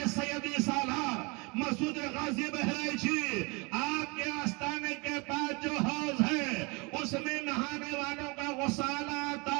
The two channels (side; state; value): left; quieter; 28.9 dB